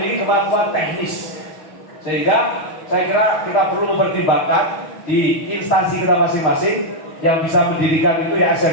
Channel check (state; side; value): late; right; 6.3 ms